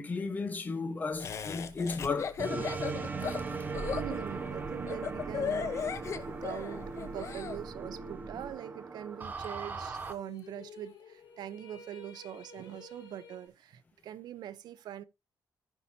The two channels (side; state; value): both; normal; correlation 0.65